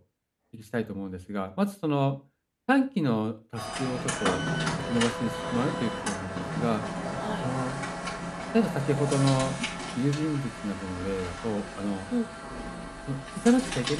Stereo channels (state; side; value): identical; both; correlation 1.00